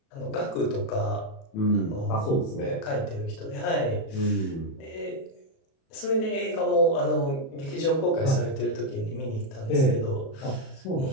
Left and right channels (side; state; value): right; late; 37 ms